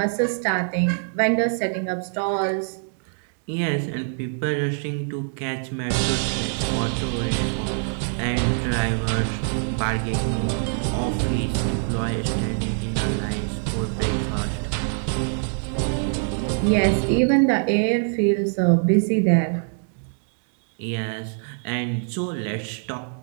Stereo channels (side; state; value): left; silent; 60 dB below the other